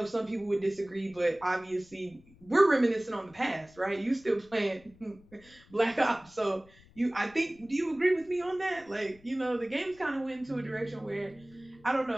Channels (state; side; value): noise; left; rumble, 26 dB below the sound